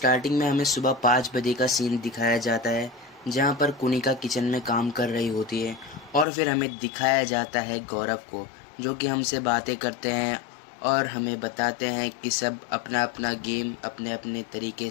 में हमें सुबह 5 बजे का सीन दिखाया जाता है, जहां पर कुनिका किचन में काम कर रही होती है। और फिर हमें दिखाया जाता है गौरव को, जो कि हमसे बातें करते हैं और हमें बताते हैं कि सब अपना अपना गेम अपने अपने तरीके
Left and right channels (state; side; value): drops out; right; at 6.2 s